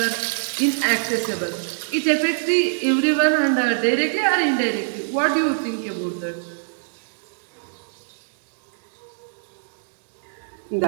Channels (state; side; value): silent; left; 63 dB below the other